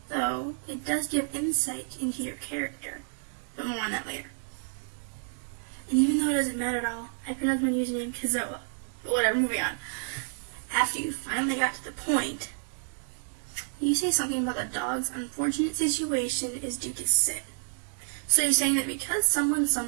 Though, it does give insight into your character, but more on that later. And even though it doesn't matter at all, I pronounced my username Kezzoa. But whatever, moving on. After you finally got to the point, you say something about the dog's unfortunate situation is due to sin. So you're saying that because someone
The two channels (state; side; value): silent; left; digital silence